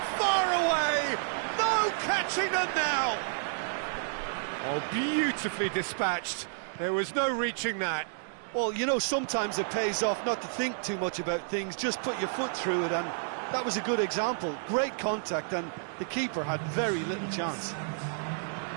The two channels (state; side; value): silent; left; digital silence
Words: far away! No catching them now! Oh, beautifully dispatched. There was no reaching that. Well, you know, sometimes it pays off not to think too much about things, just put your foot through it, and that was a good example. Great contact, and the keeper had very little chance.